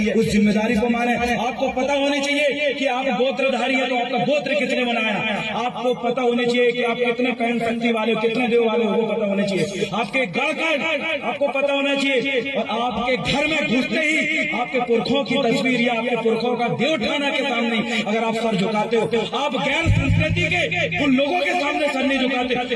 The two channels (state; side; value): identical; both; correlation 1.00